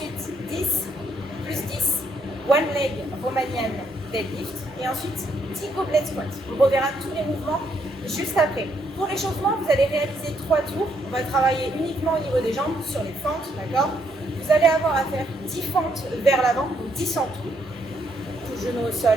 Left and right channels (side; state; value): both; normal; correlation 0.73